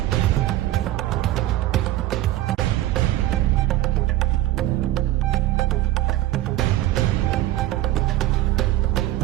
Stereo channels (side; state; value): left; quieter; 14.9 dB